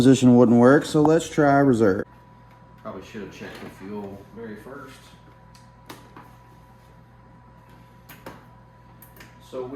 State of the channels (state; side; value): identical; both; correlation 1.00